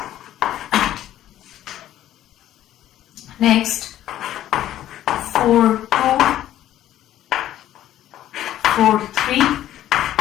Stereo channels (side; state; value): right; quieter; 12.7 dB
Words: Next 4, 2, 4, 3,